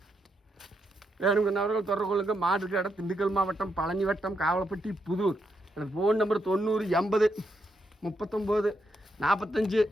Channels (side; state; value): both; normal; correlation 0.81